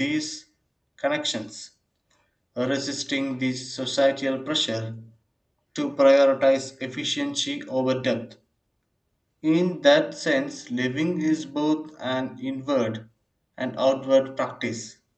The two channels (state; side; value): identical; both; correlation 1.00